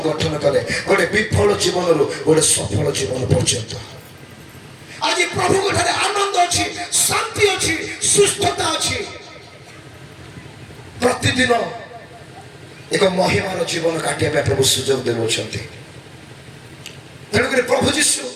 ଗଠନ କଲେ ଗୋଟେ ବିଫଳ ଜୀବନରୁ ଗୋଟେ ସଫଳ ଜୀବନ ପର୍ଯ୍ୟନ୍ତ। ଆଜି ପ୍ରଭୁଙ୍କ ଠାରେ ଆନନ୍ଦ ଅଛି, ଶାନ୍ତି ଅଛି, ସୁସ୍ଥତା ଅଛି। ପ୍ରତିଦିନ ଏକ ମହିମାର ଜୀବନ କାଟିବା ପାଇଁ ପ୍ରଭୁ ସୁଯୋଗ ଦେଉଛନ୍ତି। ତେଣୁକରି ପ୍ରଭୁ ଯୀଶୁ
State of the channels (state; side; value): identical; both; correlation 1.00